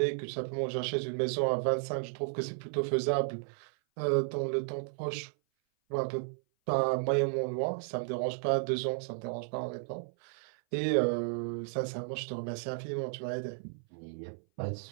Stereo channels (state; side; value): silent; left; 55 dB below the other